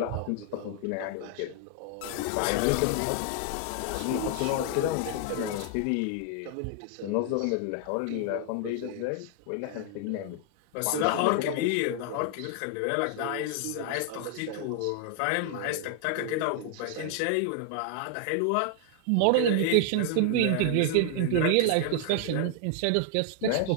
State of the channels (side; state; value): both; different; correlation 0.00